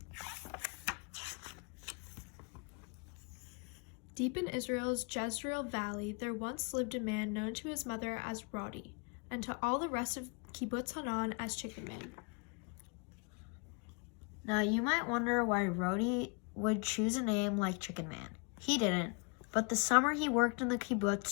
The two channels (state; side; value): quieter; right; 34.8 dB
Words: Deep in Israel's Jezreel Valley, there once lived a man known to his mother as Rodi, and to all the rest of Kibbutz Hanan as Chicken Man. Now you might wonder why Rodi would choose a name like Chicken Man. He didn't, but the summer he worked in the